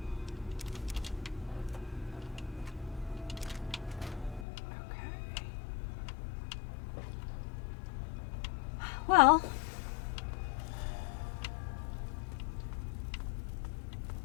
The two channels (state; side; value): drops out; right; at 4.5 s